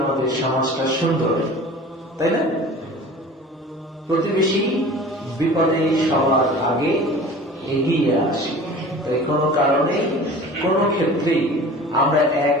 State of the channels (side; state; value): both; normal; correlation 0.41